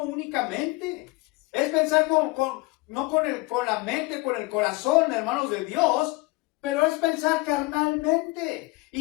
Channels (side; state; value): right; quieter; 23.2 dB